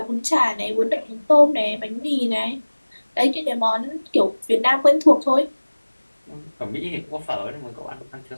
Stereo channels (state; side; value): inverted; both; correlation -1.00